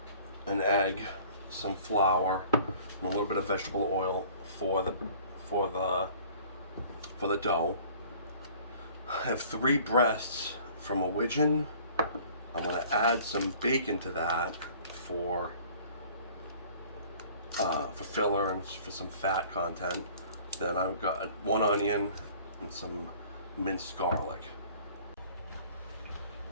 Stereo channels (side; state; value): both; inverted; correlation -0.51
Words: an egg, some flour, and a little bit of vegetable oil for the dough. I have 3 breasts from a widgeon. I'm going to add some bacon to that for filler and for some fat content. Then I've got 1 onion and some minced garlic.